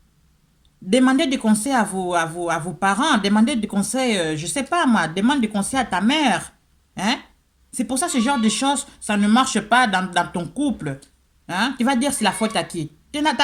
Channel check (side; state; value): both; identical; correlation 1.00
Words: Demandez des conseils à vos parents. Demandez des conseils, je sais pas moi. Demande des conseils à ta mère. Hein? C'est pour ça que ce genre de choses, ça ne marche pas dans ton couple. Hein? Tu vas dire c'est la faute à qui? Tu n'as